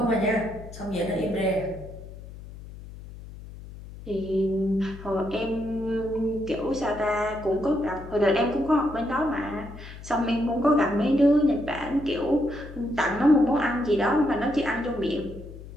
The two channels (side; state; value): left; noise; hum, 15 dB below the sound